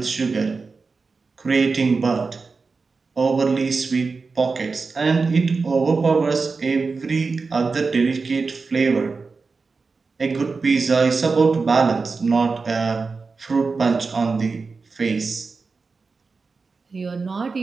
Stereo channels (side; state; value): left; quieter; 4.4 dB